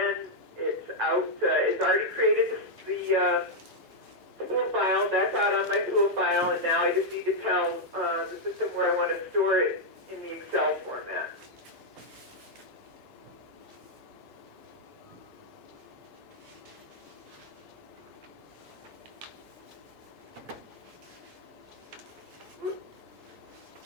it's out, it's already created the tool file, that's out on my tool file, and now I just need to tell the system where I want to store it in the Excel format.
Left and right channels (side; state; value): both; normal; correlation -0.02